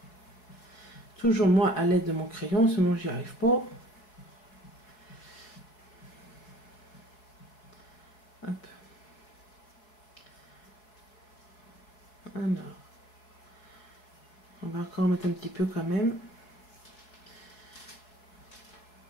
Toujours moi à l'aide de mon crayon, sinon j'y arrive pas. Hop. Alors. On va encore mettre un petit peu quand même.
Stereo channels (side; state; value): right; late; 4.6 ms